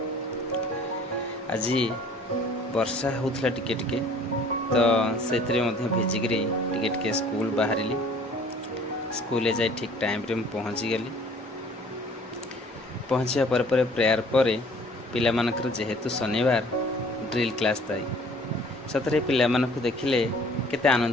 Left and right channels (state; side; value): normal; both; correlation 0.53